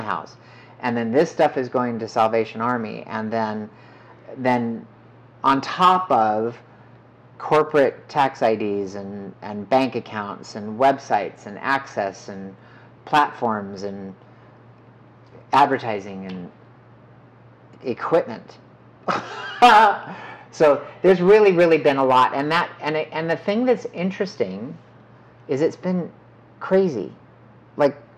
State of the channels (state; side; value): identical; both; correlation 1.00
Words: And then this stuff is going to Salvation Army. And then on top of corporate tax IDs and bank accounts and websites and access and platforms and advertising and equipment. So there's really been a lot, and the thing that's interesting is it's been crazy. Like,